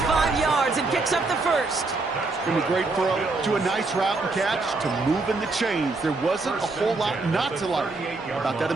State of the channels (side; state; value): left; quieter; 3.5 dB